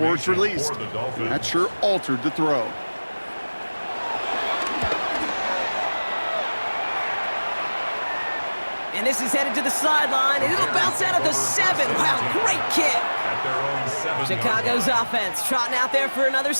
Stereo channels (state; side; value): inverted; both; correlation -1.00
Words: it's released. And that sure altered the throw. And this is headed to the sideline, and it'll bounce out at the 7. Wow, great kick. Chicago's offense trotting out there for another